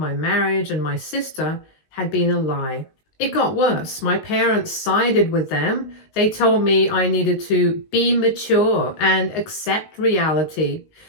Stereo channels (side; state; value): right; late; 19 ms